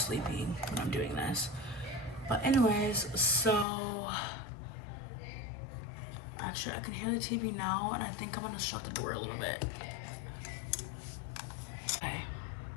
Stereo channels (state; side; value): drops out; right; at 3.7 s